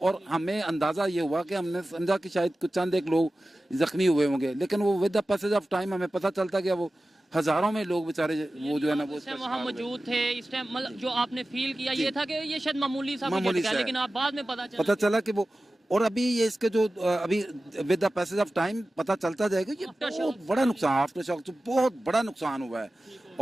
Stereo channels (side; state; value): both; normal; correlation 0.95